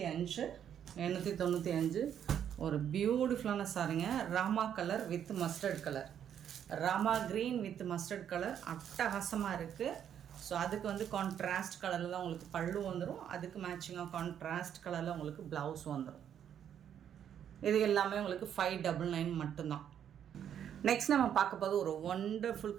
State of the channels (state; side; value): quieter; left; 9.3 dB